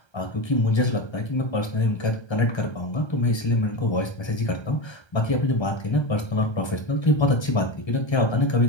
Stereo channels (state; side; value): late; right; 1.3 ms